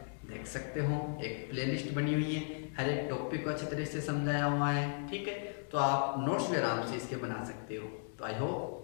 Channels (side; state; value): right; silent; digital silence